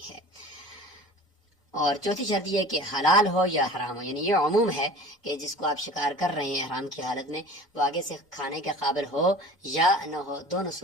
ہے. اور چوتھی شرط یہ ہے کہ حلال ہو یا حرام ہو, یعنی یہ عموم ہے کہ جس کو آپ شکار کر رہے ہیں احرام کی حالت میں وہ آگے سے کھانے کے قابل ہو یا نہ ہو, دونوں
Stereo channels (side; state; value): both; normal; correlation 0.41